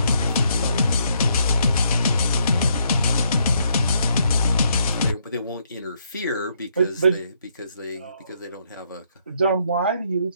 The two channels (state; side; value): inverted; both; correlation -0.72